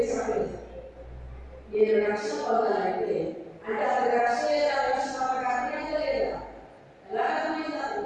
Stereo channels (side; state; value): both; identical; correlation 1.00